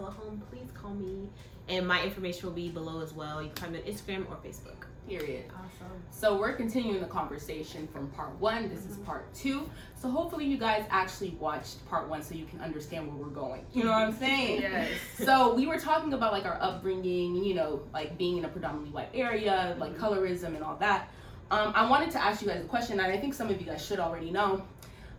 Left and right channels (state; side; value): identical; both; correlation 1.00